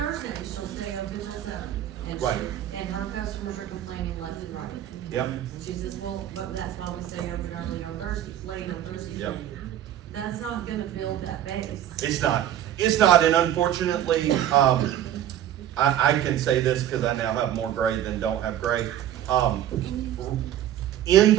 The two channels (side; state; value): left; quieter; 11.5 dB